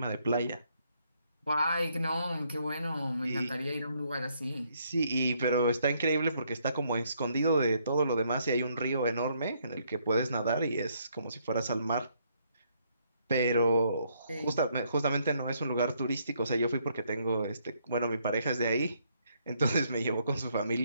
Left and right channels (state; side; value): inverted; both; correlation -0.71